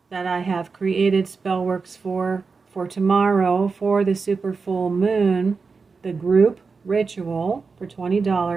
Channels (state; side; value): quieter; left; 4.7 dB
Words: that I have created spellworks for tomorrow for the super full moon, the group ritual for